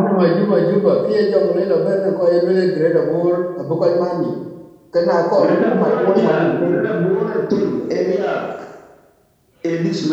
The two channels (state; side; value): identical; both; correlation 1.00